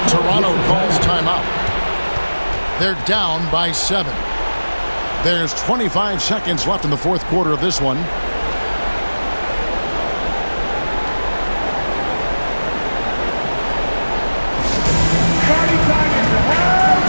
Toronto calls timeout. They're down by 7. There's 25 seconds left in the fourth quarter of this one. Party time in the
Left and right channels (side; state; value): both; inverted; correlation -1.00